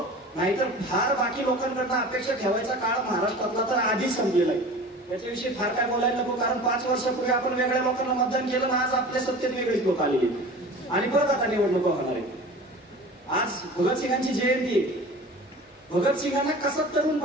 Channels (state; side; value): normal; both; correlation 0.38